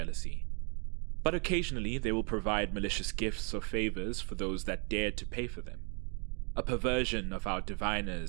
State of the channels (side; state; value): left; quieter; 37.0 dB